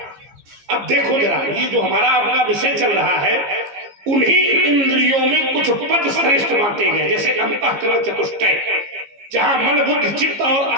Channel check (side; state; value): left; late; 15 ms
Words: अब देखो जरा, ये जो हमारा आपका विषय चल रहा है, उन्हीं इंद्रियों में कुछ पद श्रेष्ठ बांटे गए, जैसे अंतःकरण चतुष्टय, जहां मन बुद्धि चित्त और